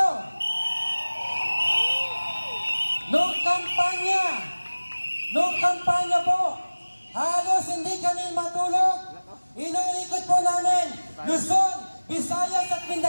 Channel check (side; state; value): both; inverted; correlation -1.00